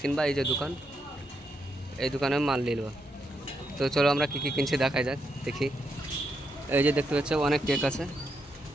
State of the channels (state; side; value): normal; both; correlation 0.81